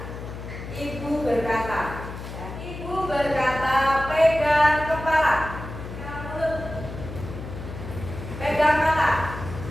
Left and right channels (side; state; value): left; noise; hum, 10 dB below the sound